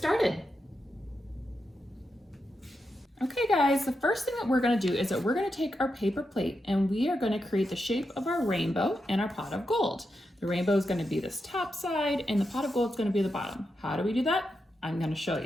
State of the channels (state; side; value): normal; both; correlation 0.86